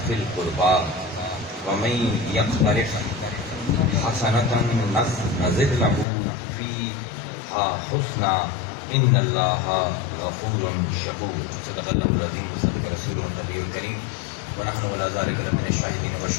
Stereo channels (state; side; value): drops out; right; at 6.1 s